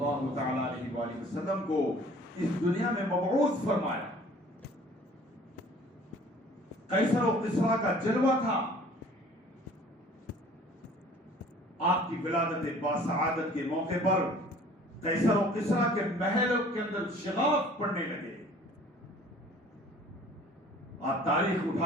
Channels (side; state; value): both; normal; correlation 0.51